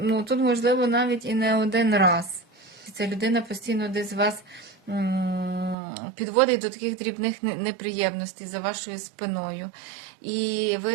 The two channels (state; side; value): drops out; left; at 5.8 s